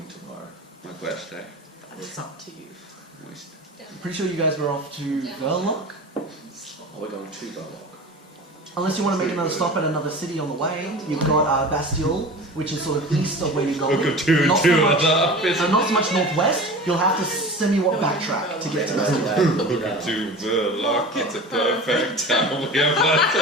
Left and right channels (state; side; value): normal; both; correlation 0.35